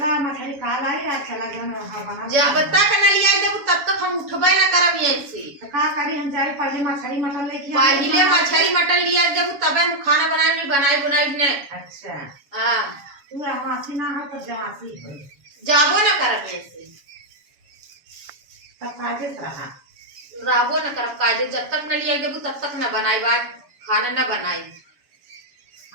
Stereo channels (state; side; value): late; left; 7.2 ms